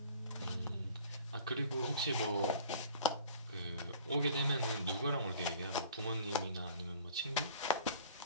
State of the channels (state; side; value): inverted; both; correlation -0.49